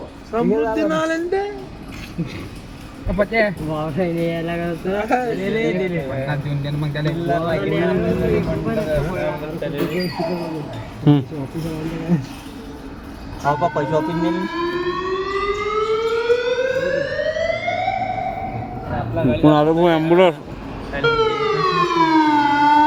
समृद्धीनं आले ते पते वावसाईने यायला मग त्याला पैसे ऑफिस नेली ॲम्ब्युलन्स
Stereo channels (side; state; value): both; identical; correlation 1.00